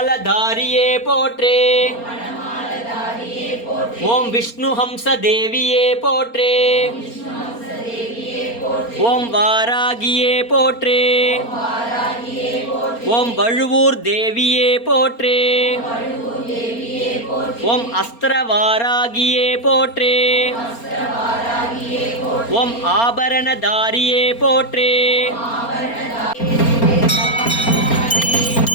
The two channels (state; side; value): late; right; 4.3 ms